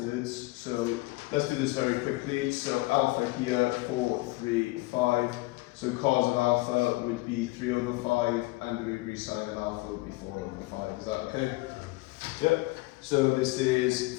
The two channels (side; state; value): right; quieter; 22.0 dB